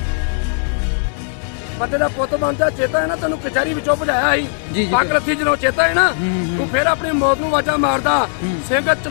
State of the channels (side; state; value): right; silent; digital silence